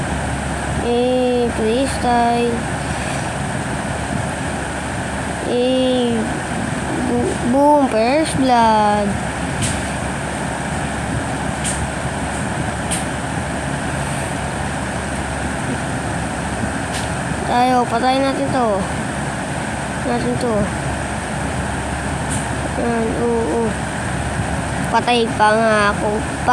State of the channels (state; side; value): identical; both; correlation 1.00